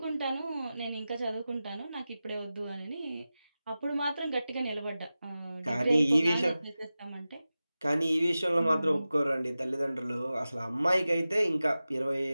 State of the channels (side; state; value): both; inverted; correlation -0.95